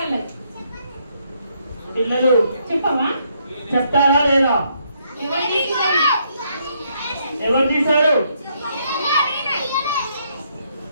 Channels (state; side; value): inverted; both; correlation -0.73